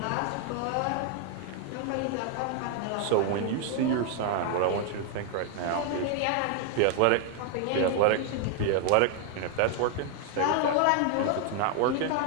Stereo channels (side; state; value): both; different; correlation 0.00